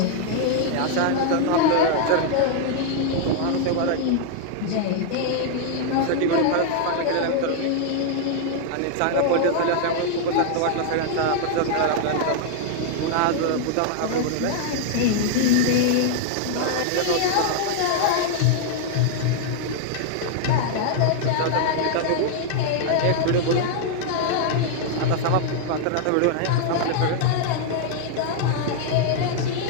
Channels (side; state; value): both; different; correlation -0.01